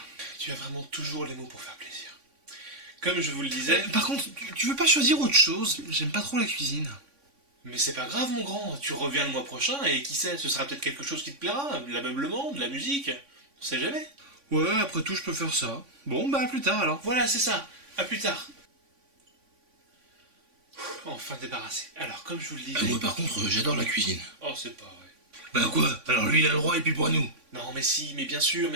Tu as vraiment toujours les mots pour faire plaisir. Comme je vous le disais... Par contre, tu veux pas choisir autre chose? J'aime pas trop la cuisine. Mais c'est pas grave mon grand, tu reviens le mois prochain et qui sait, ce sera peut-être quelque chose qui te plaira, de l'ameublement, de la musique, on sait jamais. Ouais, après tout, je peux faire ça. Bon, bah à plus tard alors. Voilà, c'est ça, à plus tard. Enfin débarrassé. Alors, comme je vous le disais... Moi par contre, j'adore la cuisine. Oh, c'est pas vrai. Bah quoi? Alors lui il a le droit et puis pour nous. Non mais si, mais bien sûr,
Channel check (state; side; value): late; left; 3.5 ms